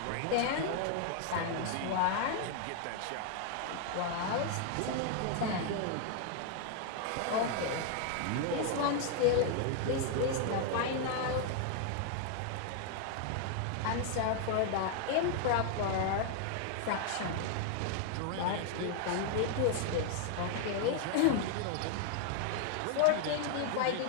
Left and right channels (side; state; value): both; different; correlation 0.00